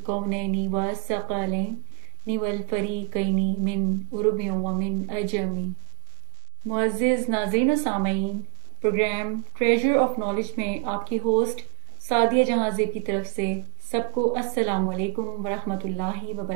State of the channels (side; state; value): left; silent; digital silence